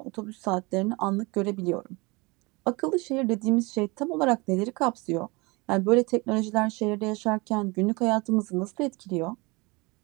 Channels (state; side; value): quieter; left; 26.0 dB